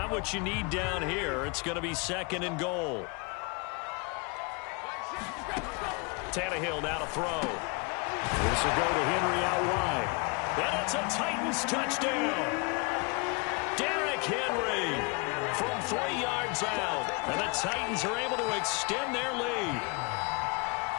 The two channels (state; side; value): quieter; right; 30.6 dB